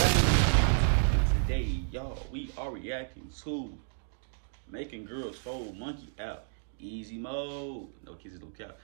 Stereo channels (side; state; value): left; silent; digital silence